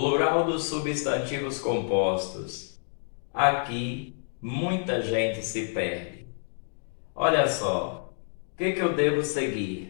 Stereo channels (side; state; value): right; silent; digital silence